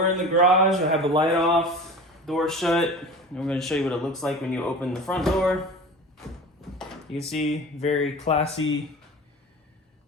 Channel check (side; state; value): both; normal; correlation 0.35